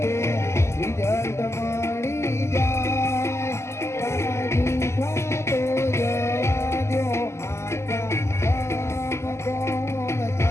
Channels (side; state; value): right; late; 0.13 ms